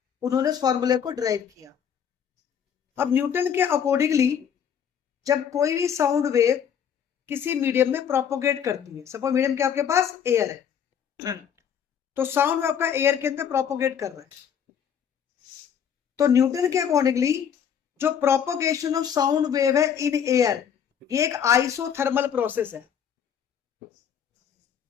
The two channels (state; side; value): quieter; right; 8.2 dB